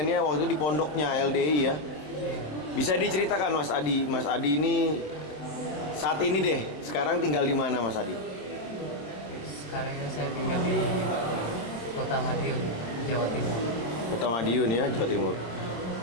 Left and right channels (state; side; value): late; right; 26 ms